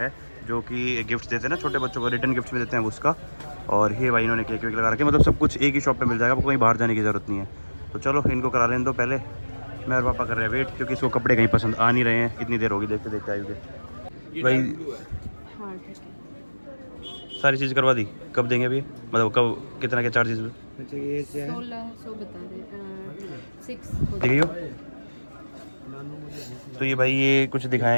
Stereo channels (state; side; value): inverted; both; correlation -1.00